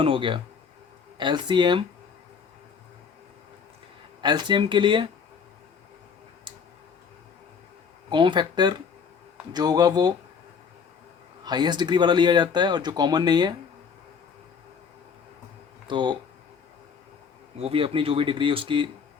हो गया। एलसीएम के लिए कॉमन फैक्टर जो होगा वो हाईएस्ट डिग्री वाला लिया जाता है, और जो कॉमन नहीं है तो वो भी अपनी जो भी डिग्री उसकी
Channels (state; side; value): quieter; right; 6.2 dB